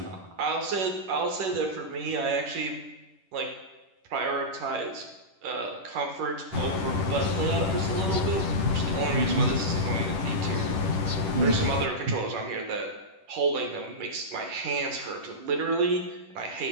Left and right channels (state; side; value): late; left; 10 ms